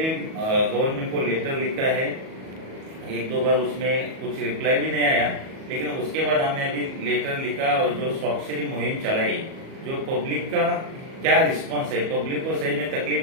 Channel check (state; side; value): late; left; 37 ms